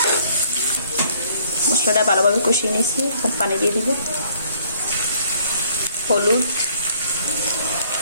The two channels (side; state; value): both; inverted; correlation -0.61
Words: মশলাটা ভালোভাবে কষিয়ে নিয়েছি, এখন পানি দিয়ে দিব। হলুদ,